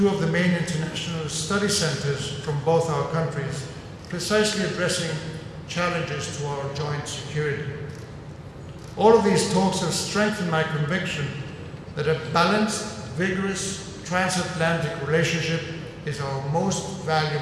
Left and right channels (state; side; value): identical; both; correlation 1.00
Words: of the main international study centers from both our countries, precisely addressing challenges to our joint security. All of these talks have strengthened my conviction that a balanced, vigorous, transatlantic relationship is our most